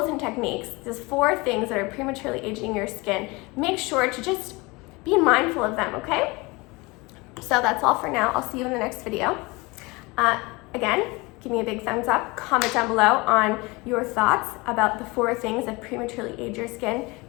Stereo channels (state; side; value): quieter; right; 24.7 dB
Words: and techniques, these 4 things that are prematurely aging your skin, make sure to just be mindful of them, okay? So that's all for now. I'll see you in the next video. Again, give me a big thumbs up. Comment down below on your thoughts about the 4 things that prematurely age your skin.